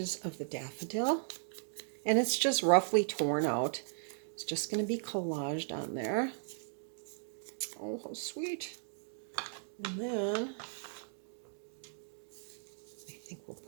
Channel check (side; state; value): left; silent; digital silence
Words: of the daffodil. And it's just roughly torn out. It's just going to be collaged on there. Oh, how sweet. And then I think we'll